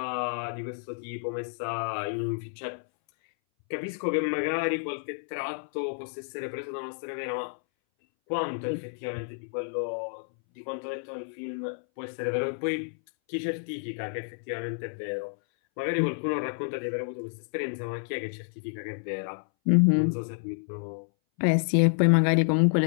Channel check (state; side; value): silent; right; 58 dB below the other